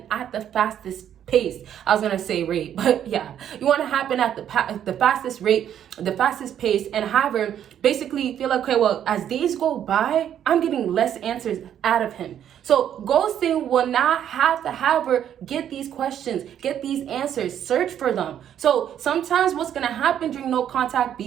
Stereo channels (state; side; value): quieter; left; 9.9 dB